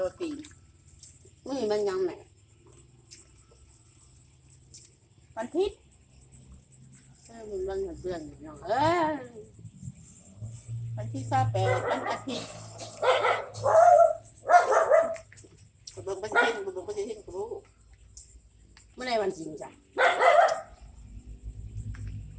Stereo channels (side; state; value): both; identical; correlation 1.00